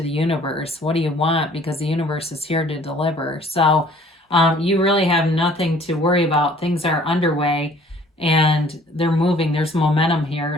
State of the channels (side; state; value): both; normal; correlation 0.55